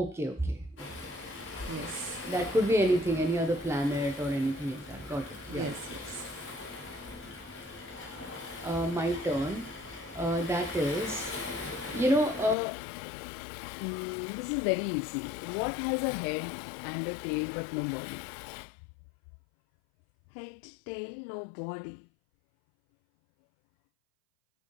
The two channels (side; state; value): right; drops out; at 12.6 s